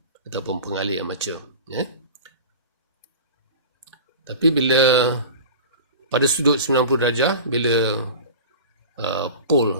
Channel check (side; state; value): both; inverted; correlation -0.34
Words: ataupun pengalih armature. Tapi bila pada sudut 90 darjah, bila pole